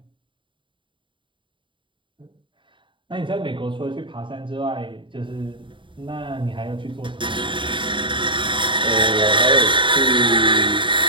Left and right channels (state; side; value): late; left; 0.24 ms